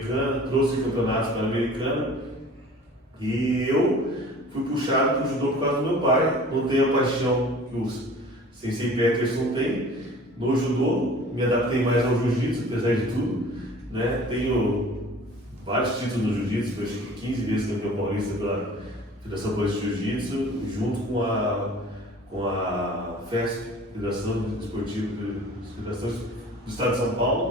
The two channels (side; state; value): both; normal; correlation 0.46